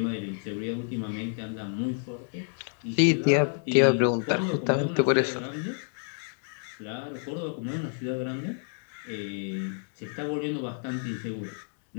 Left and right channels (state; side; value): silent; right; 58 dB below the other